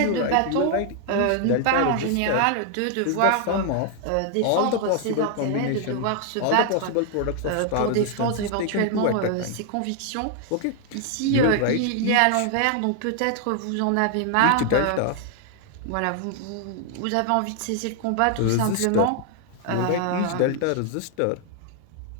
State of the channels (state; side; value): different; both; correlation 0.00